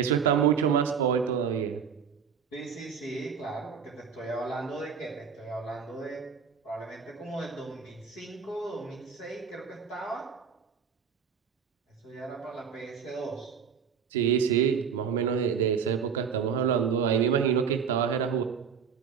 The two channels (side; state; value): left; quieter; 7.1 dB